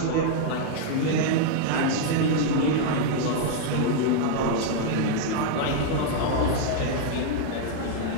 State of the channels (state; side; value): different; both; correlation 0.00